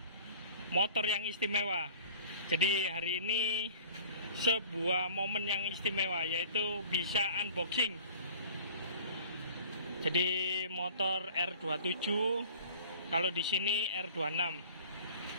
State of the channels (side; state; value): both; inverted; correlation -0.46